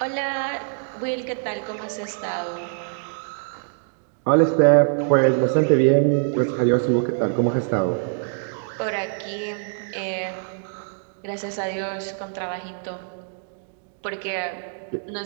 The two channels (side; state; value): left; silent; digital silence